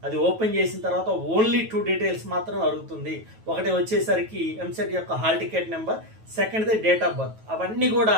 అది ఓపెన్ చేసిన తర్వాత ఓన్లీ 2 డీటెయిల్స్ మాత్రమే అడుగుతుంది. ఒకటి వచ్చేసరికి ఎంసెట్ యొక్క హాల్ టికెట్ నెంబర్, సెకండ్ది డేట్ ఆఫ్ బర్త్. అవన్నీ కూడా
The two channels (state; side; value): late; left; 9.2 ms